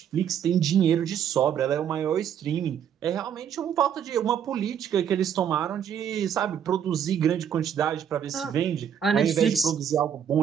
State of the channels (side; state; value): left; quieter; 8.8 dB